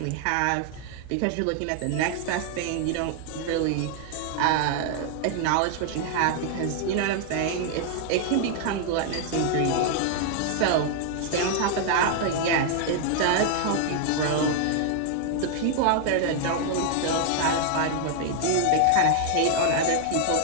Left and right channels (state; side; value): different; both; correlation 0.00